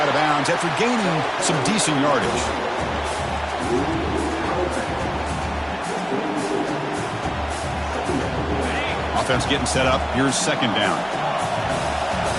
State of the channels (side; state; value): both; identical; correlation 1.00